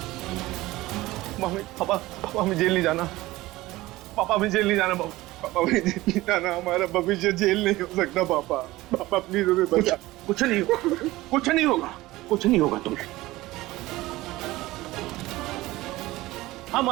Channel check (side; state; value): left; quieter; 18.4 dB